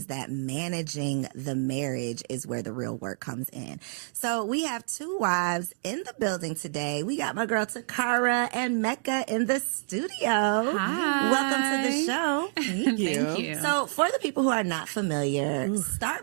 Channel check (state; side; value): silent; left; 59 dB below the other